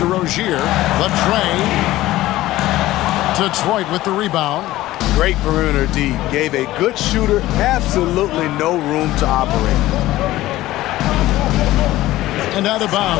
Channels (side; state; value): right; quieter; 16.2 dB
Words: Rozier. The tray. Detroit with the rebound. Great perimeter D. Gave a good shooter absolutely no room to operate. And out of